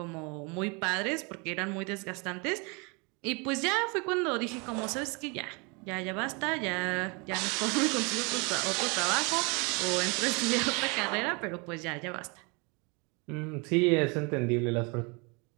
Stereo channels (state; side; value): quieter; left; 30.6 dB